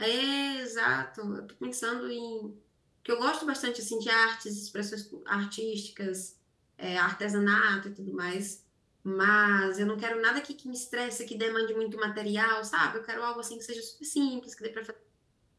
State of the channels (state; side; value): identical; both; correlation 1.00